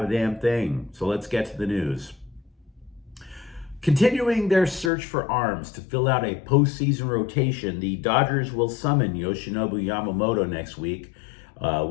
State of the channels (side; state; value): right; drops out; at 4.9 s